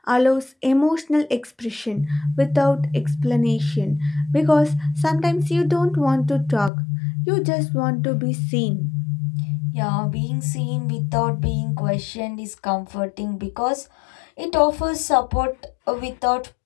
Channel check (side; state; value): right; drops out; at 6.7 s